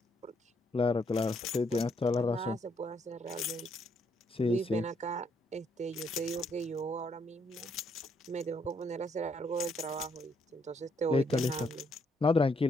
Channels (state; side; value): normal; both; correlation 0.72